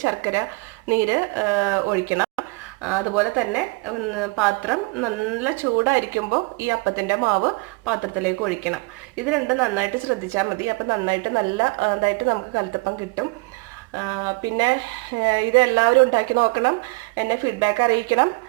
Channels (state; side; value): quieter; left; 27.0 dB